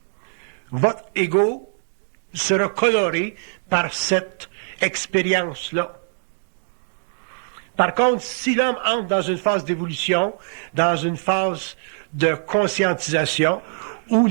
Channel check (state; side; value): silent; left; 64 dB below the other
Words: votre ego sera coloré par cette expérience-là. Par contre, si l'homme entre dans une phase d'évolution, dans une phase de conscientisation, où